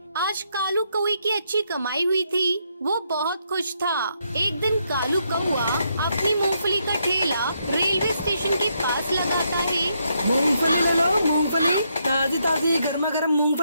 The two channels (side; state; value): both; inverted; correlation -0.77